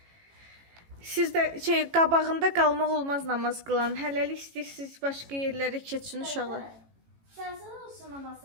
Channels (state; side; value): late; left; 18 ms